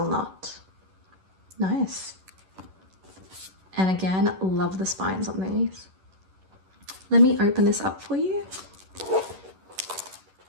not. Nice. And again, love the spines on these. Let me open this up for you.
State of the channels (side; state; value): left; late; 11 ms